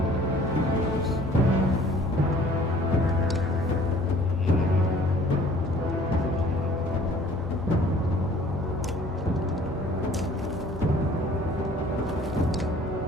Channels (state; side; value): normal; both; correlation 0.53